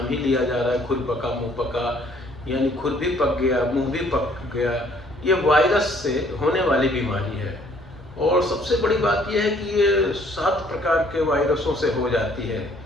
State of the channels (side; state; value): both; normal; correlation 0.61